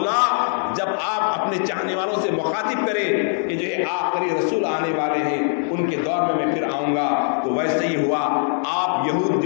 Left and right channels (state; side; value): silent; right; 59 dB below the other